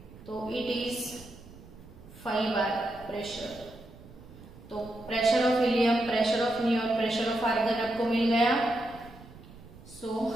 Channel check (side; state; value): right; noise; rumble, 19 dB below the sound